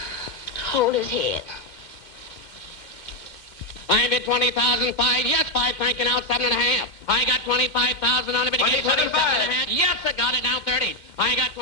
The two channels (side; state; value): right; late; 2.2 ms